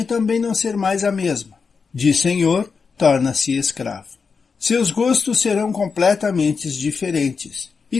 também não ser mais a mesma. De senhor, torna-se escravo. Seus gostos serão completamente diferentes e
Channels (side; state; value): right; quieter; 5.3 dB